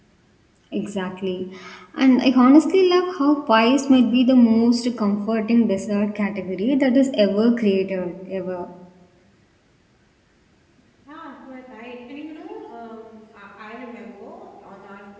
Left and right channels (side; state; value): both; identical; correlation 1.00